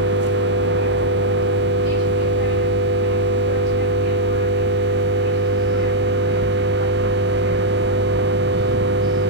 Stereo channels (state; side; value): normal; both; correlation -0.06